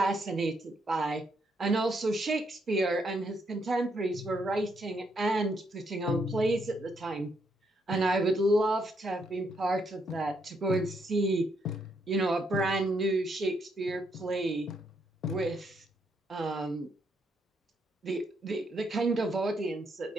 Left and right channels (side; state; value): both; normal; correlation 0.75